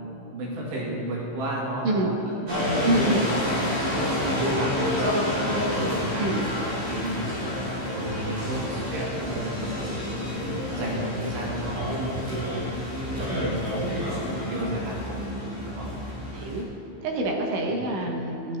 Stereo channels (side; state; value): left; late; 15 ms